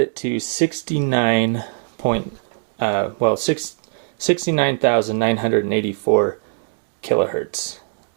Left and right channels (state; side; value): silent; left; digital silence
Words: it to 69,984 kilohertz